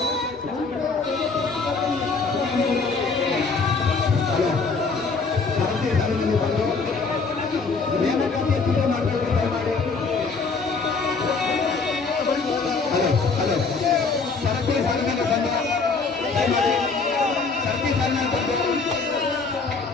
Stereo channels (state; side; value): quieter; right; 4.4 dB